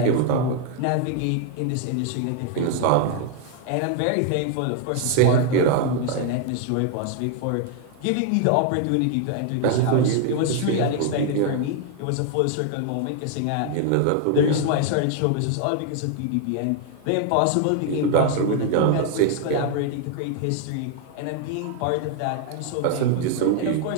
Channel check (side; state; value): both; different; correlation 0.00